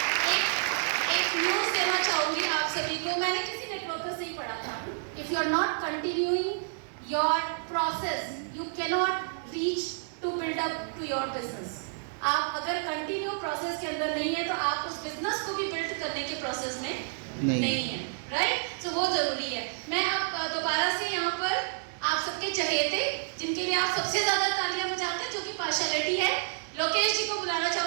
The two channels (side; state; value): left; silent; digital silence